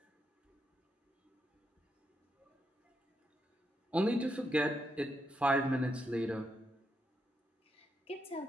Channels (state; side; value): normal; both; correlation 0.81